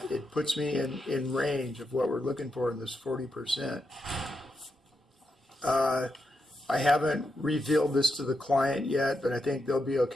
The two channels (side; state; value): both; normal; correlation 0.85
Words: it puts me in range of what we're looking for in this 40%. I haven't revealed this to the client yet, but I think they'll be